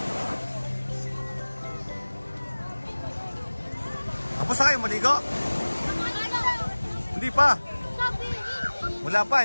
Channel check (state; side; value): inverted; both; correlation -1.00